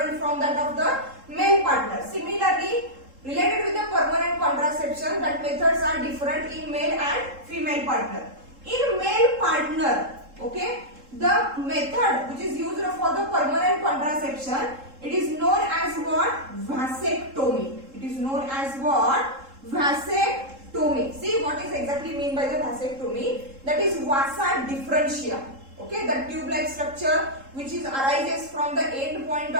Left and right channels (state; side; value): late; left; 3.7 ms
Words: from that of the male partner. Similarly, related with the permanent contraception, that methods are different in male and female partner. In male partner, okay, the method which is used for the permanent contraception, it is known as what? Vasectomy. It is known as what? Vasectomy. See what is exactly mean by the vasectomy? That is vasa differentia. Okay, the tube-like structure which is arises from the end point